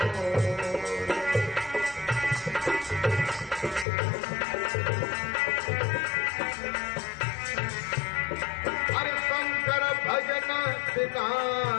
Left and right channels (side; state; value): right; drops out; at 3.9 s